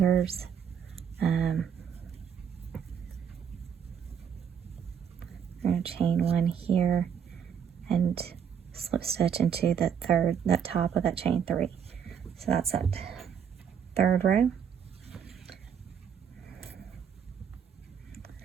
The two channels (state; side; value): quieter; left; 7.8 dB